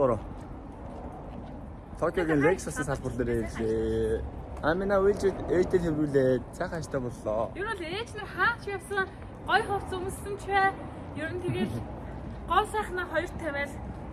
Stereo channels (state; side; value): identical; both; correlation 1.00